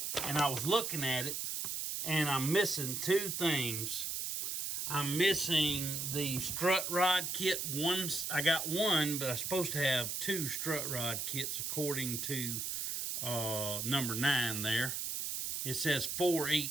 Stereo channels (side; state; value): right; noise; hiss, 2 dB below the sound